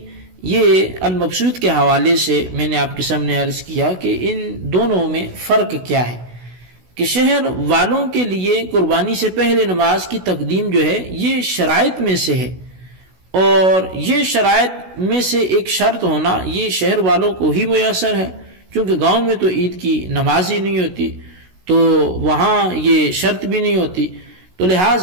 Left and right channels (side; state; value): left; late; 16 ms